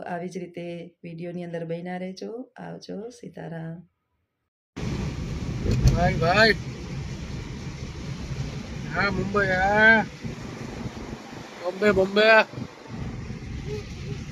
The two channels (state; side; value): identical; both; correlation 1.00